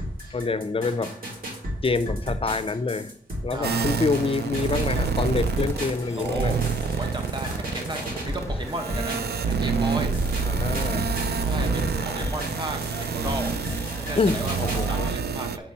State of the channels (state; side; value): normal; both; correlation 0.58